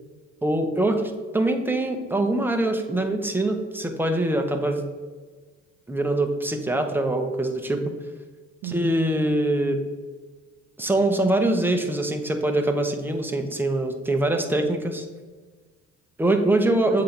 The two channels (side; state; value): both; normal; correlation 0.73